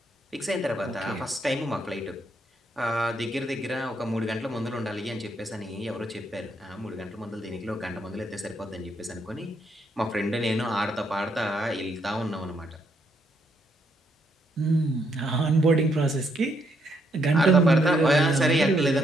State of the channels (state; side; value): normal; both; correlation 0.74